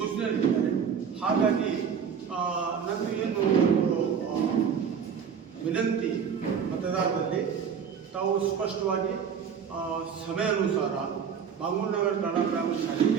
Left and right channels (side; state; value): left; quieter; 7.2 dB